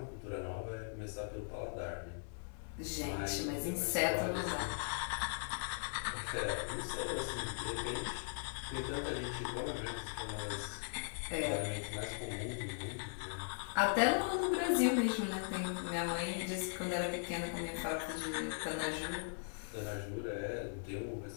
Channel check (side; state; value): right; silent; digital silence